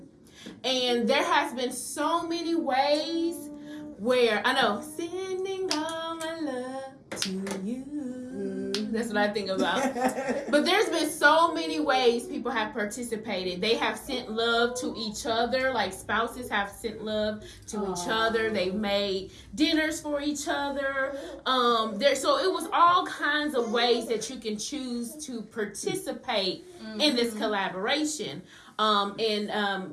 And there has been so many ways where, I know, sending all my love to you. That's what I think about. But there's been so many ways people have participated. They have sent love to each other, like spouses have sent love to each other. They've made dinners for each other. So it was all kinds of ways that you can choose to participate in this collaboration.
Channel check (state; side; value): identical; both; correlation 1.00